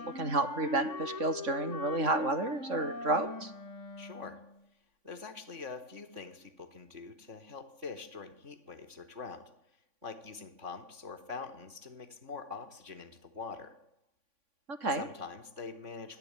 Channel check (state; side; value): late; left; 3.5 ms